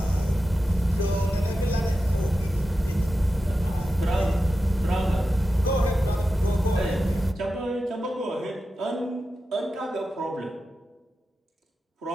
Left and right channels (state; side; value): normal; both; correlation 0.91